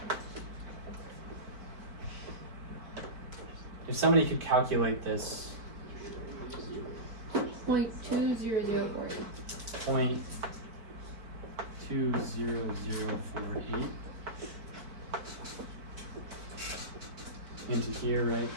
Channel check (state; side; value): late; left; 4.5 ms